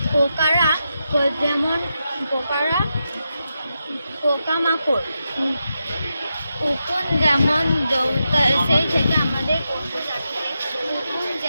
পোকামাকড় উকুন যেমন সেই থেকে আমাদের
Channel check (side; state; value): both; inverted; correlation -0.87